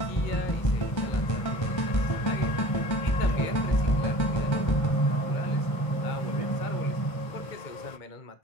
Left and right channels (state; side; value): late; right; 2.1 ms